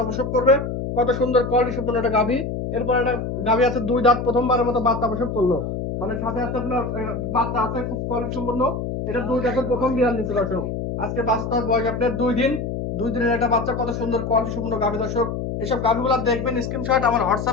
প্রসব করবে। কত সুন্দর কোয়ালিটি সম্পন্ন একটা গাভী। এরপর একটা গাভী আছে 2 দাঁত, প্রথমবারের মতো বাচ্চা প্রসব করলো। মানে সাথে আছে আপনার বাচ্চা আছে খুব কোয়ালিটি সম্পন্ন। এটা 2 দাঁতের প্রথম বিয়ান নিচ্ছে দর্শক। আজকে বাচ্চার বয়স আপনার 2 দিন। 2 দিনের একটা বাচ্চা, কত সুন্দর কোয়ালিটি সম্পন্ন গাভী দর্শক। এইসব গাভীগুলো দেখবেন, স্ক্রিনশট আমার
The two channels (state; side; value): noise; left; hum, 4 dB below the sound